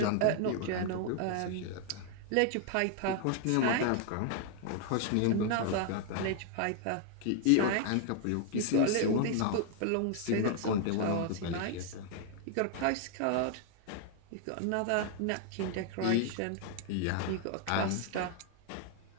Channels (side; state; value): both; different; correlation 0.00